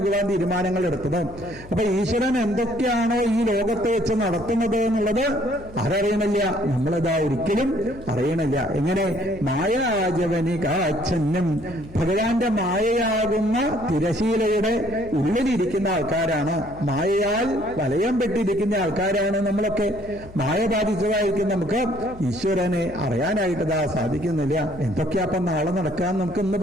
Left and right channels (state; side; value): noise; left; hum, 19 dB below the sound